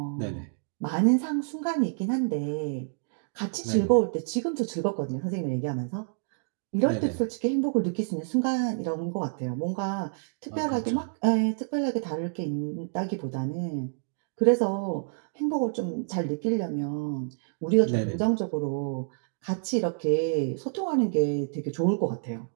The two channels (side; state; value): left; silent; digital silence